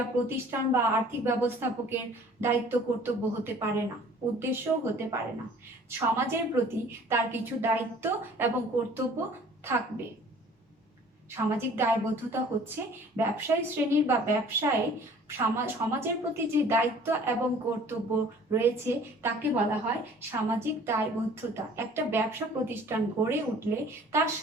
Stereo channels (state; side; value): normal; both; correlation 0.51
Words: প্রতিষ্ঠান বা আর্থিক ব্যবস্থাপকের দায়িত্ব কর্তব্য হতে পারে না, উদ্দেশ্যও হতে পারে না। সমাজের প্রতি তার কিছু দায়িত্ব এবং কর্তব্য থাকবে। সামাজিক দায়বদ্ধতা হচ্ছে ব্যবসায়ী শ্রেণীর বা ব্যবসায় সমাজের প্রতি যে দায়িত্ব এবং কর্তব্য রয়েছে তাকে বলা হয় সামাজিক দায়বদ্ধতা। একটা ব্যবসা প্রতিষ্ঠান গড়ে উঠলে তার